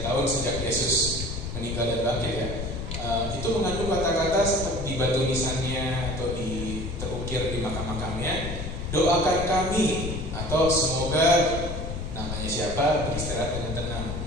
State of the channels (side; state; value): left; noise; rumble, 5 dB below the sound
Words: tahun sejak Yesus meninggal dan bangkit ya. Itu mengandung kata-kata di batu nisannya atau terukir di makam-makamnya, doakan kami, atau semoga namanya siapa beristirahat dengan tenang.